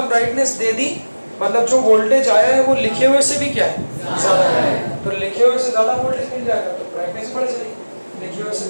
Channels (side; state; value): both; inverted; correlation -1.00